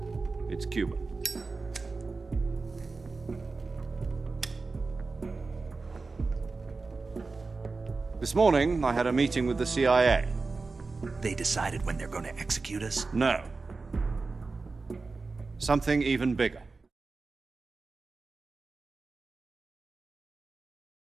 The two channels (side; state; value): left; quieter; 4.0 dB